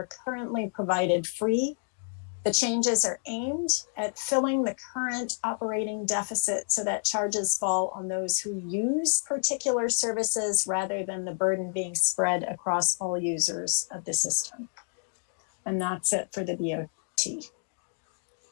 currently provided free. The changes are aimed at filling the current operating deficit so that charges fall on those who use particular services rather than the burden being spread across all users of the system. And that's it for the BOT.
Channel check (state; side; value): silent; right; digital silence